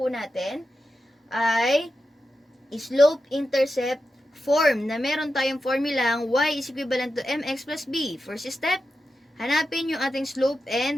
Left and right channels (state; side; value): normal; both; correlation 0.90